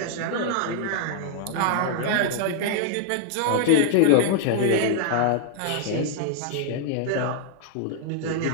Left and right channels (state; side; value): different; both; correlation -0.01